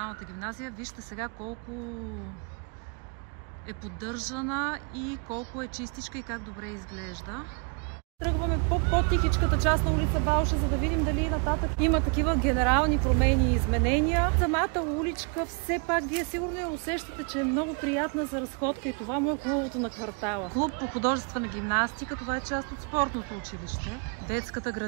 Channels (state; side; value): quieter; left; 37.1 dB